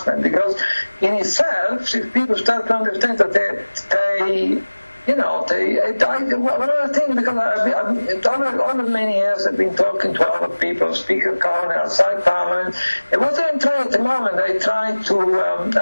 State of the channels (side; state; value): both; inverted; correlation -1.00